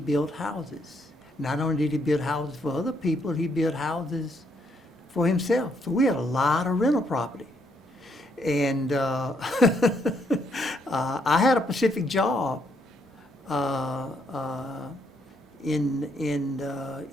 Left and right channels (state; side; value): normal; both; correlation 0.73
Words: houses. Not only did he build houses for other people, he built houses for himself. So we had a lot of rental property. And I had a specific job in